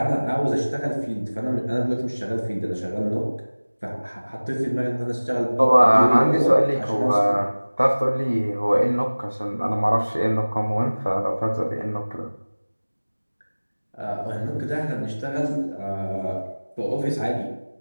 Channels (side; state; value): both; inverted; correlation -1.00